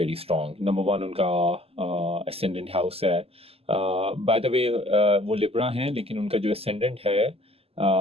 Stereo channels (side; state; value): left; late; 0.29 ms